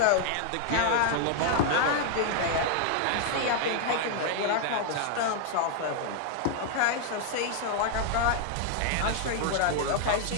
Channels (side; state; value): both; different; correlation 0.00